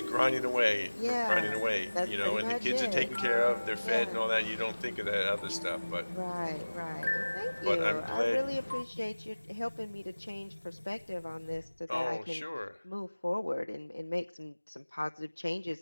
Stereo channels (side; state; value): both; inverted; correlation -1.00